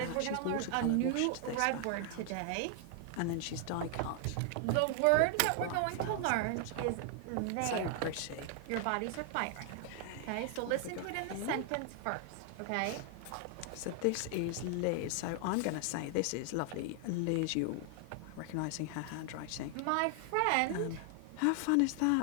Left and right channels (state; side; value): different; both; correlation 0.00